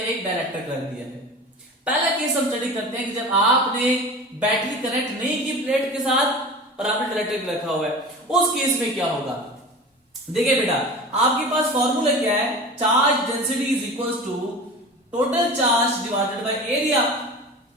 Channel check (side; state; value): both; normal; correlation 0.34